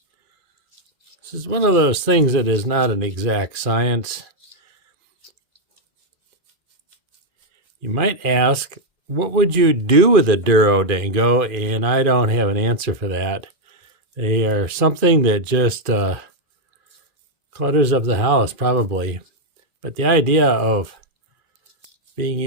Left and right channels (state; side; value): late; left; 2.4 ms